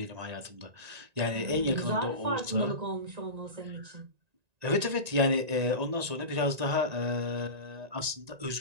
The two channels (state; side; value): late; left; 1.9 ms